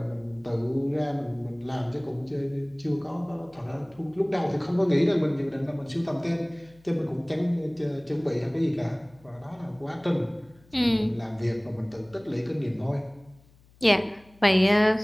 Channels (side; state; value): left; noise; hum, 28 dB below the sound